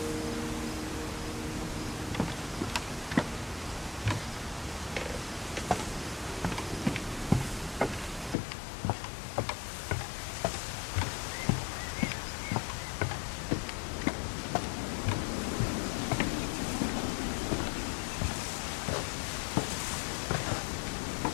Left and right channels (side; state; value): right; drops out; at 8.3 s